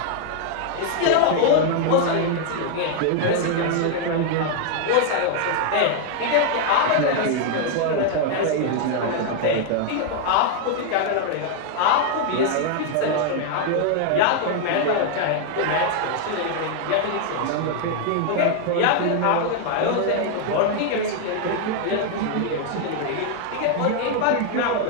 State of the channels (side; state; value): both; different; correlation 0.00